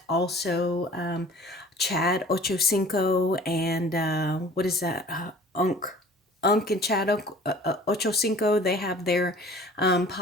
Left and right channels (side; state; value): both; normal; correlation 0.47